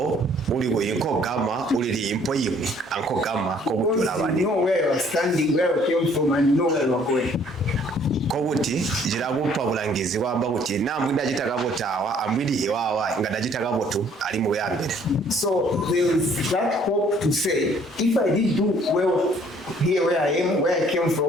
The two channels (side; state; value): both; normal; correlation 0.60